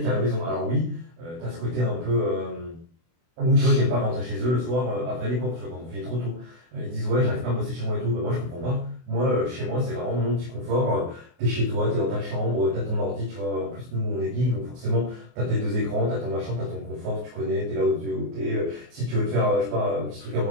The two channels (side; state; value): left; late; 24 ms